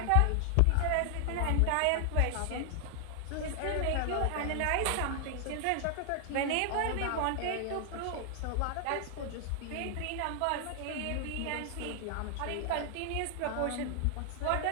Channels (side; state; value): both; different; correlation 0.00